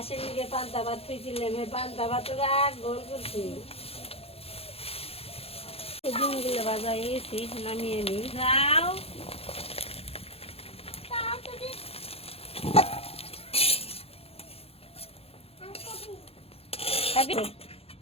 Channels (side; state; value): right; late; 0.29 ms